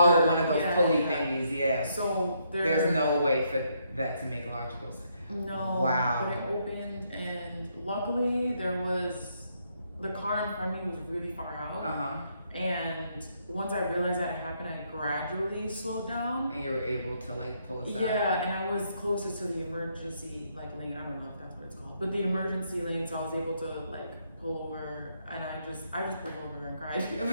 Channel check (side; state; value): both; inverted; correlation -0.74